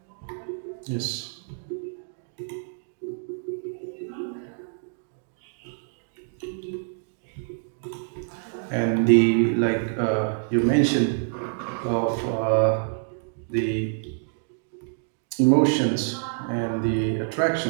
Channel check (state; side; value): silent; left; digital silence